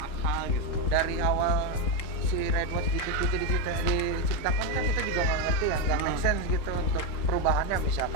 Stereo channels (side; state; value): right; late; 3.8 ms